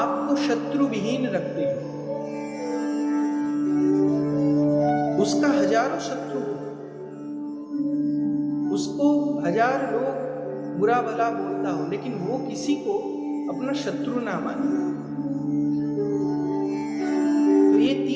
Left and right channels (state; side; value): identical; both; correlation 1.00